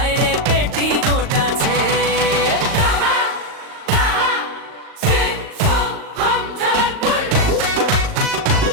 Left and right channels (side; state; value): left; late; 38 ms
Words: রে পেটিকোট আছে।